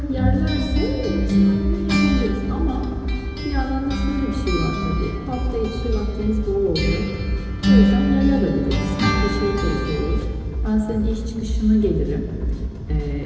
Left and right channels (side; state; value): both; identical; correlation 1.00